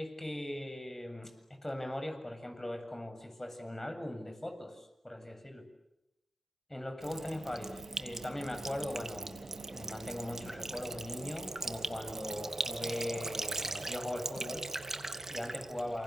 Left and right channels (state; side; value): normal; both; correlation 0.88